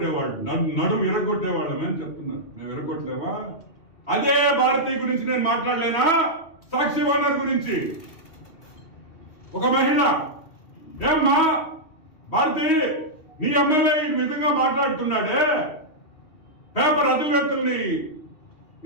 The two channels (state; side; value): late; right; 3.1 ms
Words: అని చెప్తున్నారు. మేము ఇరగొట్టలేమా? అదే భారతి గురించి నేను మాట్లాడలేనా? సాక్షి ఓనర్ గురించి ఒక మహిళ, ఏమ్మా భారతి, నీ ఎమ్మెల్యే ఈ విధంగా మాట్లాడుతున్నాడే, పేపర్ అధినేతల్ని